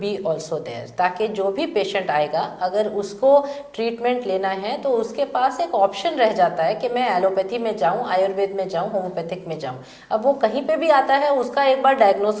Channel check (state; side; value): identical; both; correlation 1.00